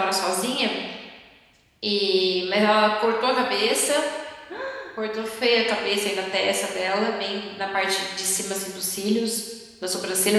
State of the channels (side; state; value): both; identical; correlation 1.00